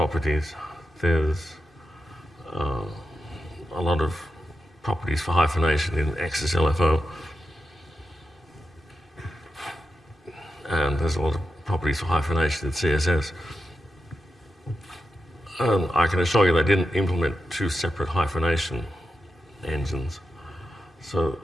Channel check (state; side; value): normal; both; correlation 0.89